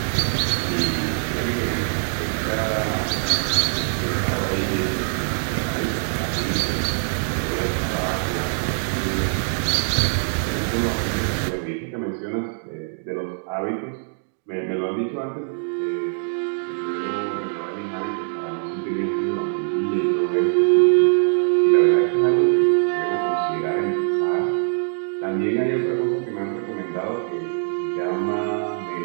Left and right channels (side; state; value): left; silent; 63 dB below the other